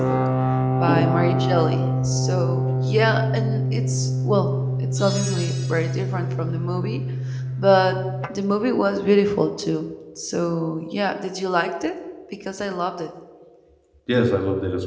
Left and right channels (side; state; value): both; identical; correlation 1.00